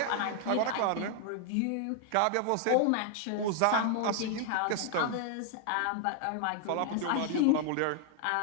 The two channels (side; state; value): both; different; correlation 0.00